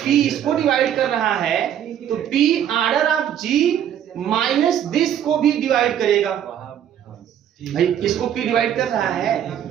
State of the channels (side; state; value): left; quieter; 9.9 dB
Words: इसको डिवाइड कर रहा है, तो P order of G minus this को भी डिवाइड करेगा। भाई इसको P डिवाइड कर रहा है,